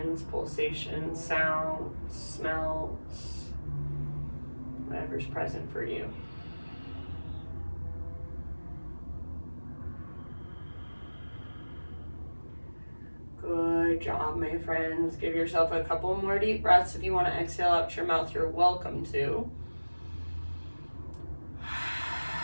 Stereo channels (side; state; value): both; inverted; correlation -1.00